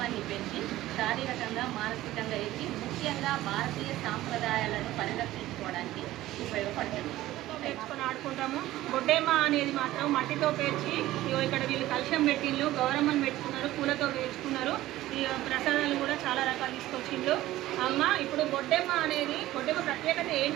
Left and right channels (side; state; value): left; quieter; 15.7 dB